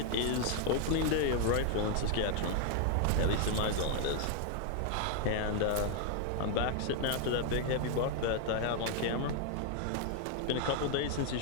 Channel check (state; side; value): different; both; correlation 0.00